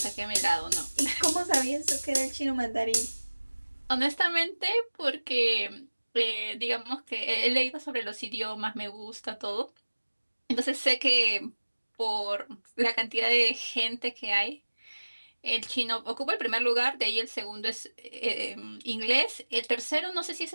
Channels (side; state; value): both; inverted; correlation -1.00